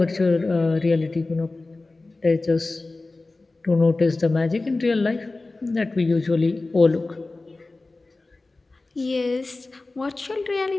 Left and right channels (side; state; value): right; quieter; 3.3 dB